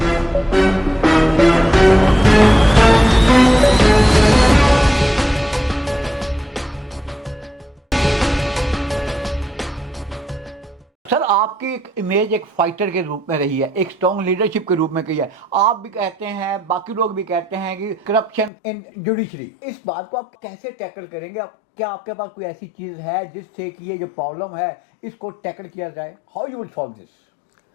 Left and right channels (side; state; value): right; drops out; at 18.5 s